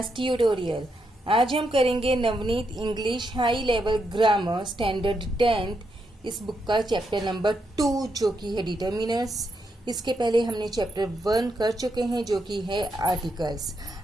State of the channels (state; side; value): normal; both; correlation 0.81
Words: tutorial. आज हम करेंगे Navneet English high level grammar standard 10th इस बुक का चैप्टर नंबर 2 जो कि है डिटर्मिनर्स। इसके पहले हमने चैप्टर 1 कर चुके हैं जो कि है आर्टिकल्स।